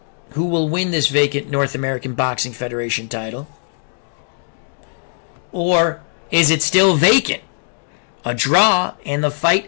who will win this vacant North American Boxing Federation title. Or is it still vacant? A draw and the fight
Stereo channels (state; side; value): silent; right; digital silence